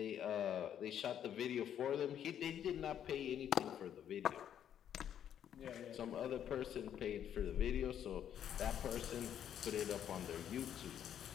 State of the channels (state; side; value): quieter; right; 9.7 dB